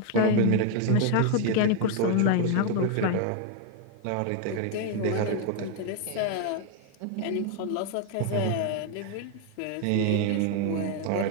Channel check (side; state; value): both; different; correlation 0.01